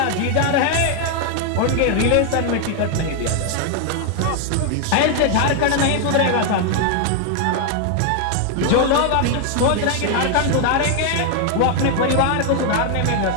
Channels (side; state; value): both; different; correlation 0.00